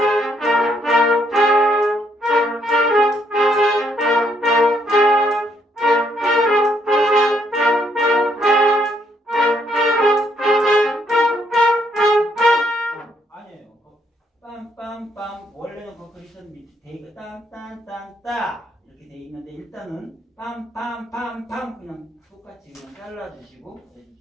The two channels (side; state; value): both; normal; correlation 0.72